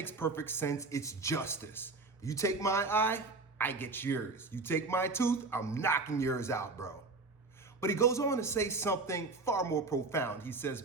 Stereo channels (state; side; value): quieter; left; 3.6 dB